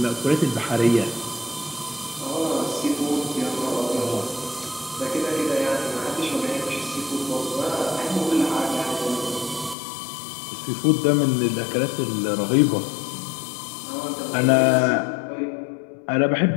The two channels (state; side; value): drops out; right; at 9.8 s